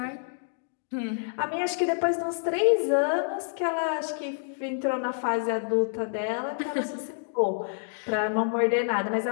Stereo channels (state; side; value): silent; right; digital silence